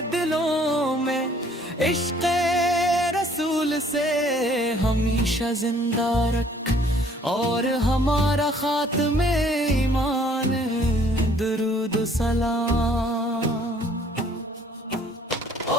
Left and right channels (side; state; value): both; normal; correlation 0.59